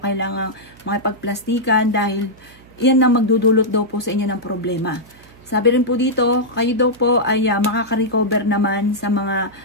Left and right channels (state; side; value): noise; right; hum, 25 dB below the sound